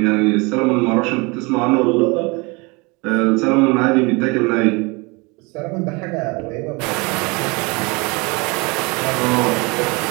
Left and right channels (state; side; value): quieter; left; 27.2 dB